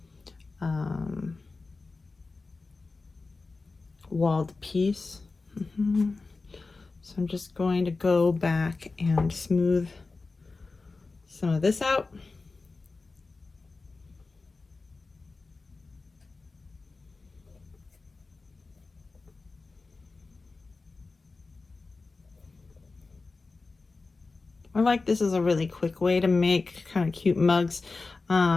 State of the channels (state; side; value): quieter; right; 3.8 dB